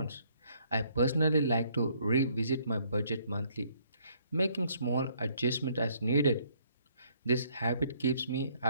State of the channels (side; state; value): both; inverted; correlation -0.66